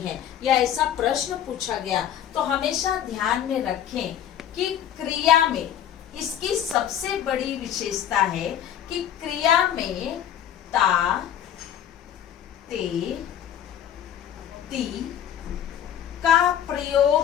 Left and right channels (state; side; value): quieter; right; 10.0 dB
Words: या ऐसा प्रश्न पूछा गया तो हमेशा ध्यान में रखें कि क्रिया में इसकी सबसे बड़ी विशेषता है कि क्रिया में ता, ते, ती का